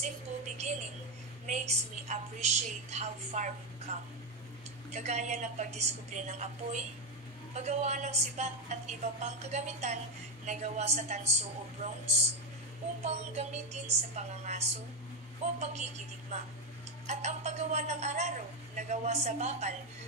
beginning makes me appreciate how far we've come. Kagaya ng pagdiskubre ng apoy, paggawa ng sibat at iba pang kagamitan na gawa sa tanso o bronze upang gamitin sa pangangaso o pagkikidigma, at ang paggawa ng araro na gawa sa bakal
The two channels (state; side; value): noise; left; hum, 29 dB below the sound